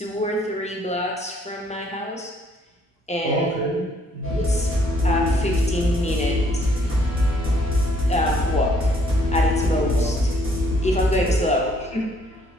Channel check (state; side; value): normal; both; correlation 0.65